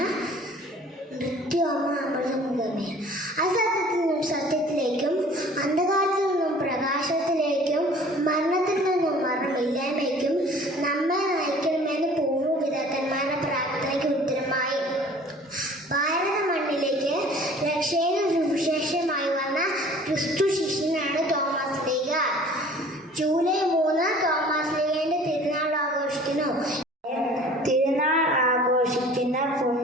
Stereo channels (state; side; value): normal; both; correlation 0.49